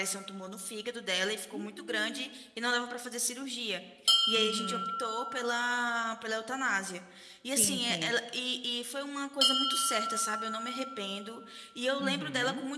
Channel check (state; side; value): identical; both; correlation 1.00